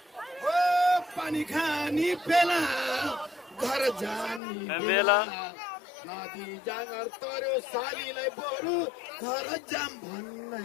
हो पानी खानी बेला घर जानी बेला नदी जाँगर तर्यो सालीलाई बरु घर जाम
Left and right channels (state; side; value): drops out; right; at 4.4 s